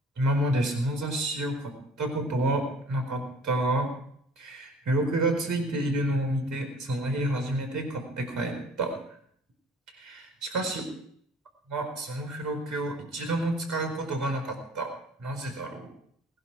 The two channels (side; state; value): both; normal; correlation 0.50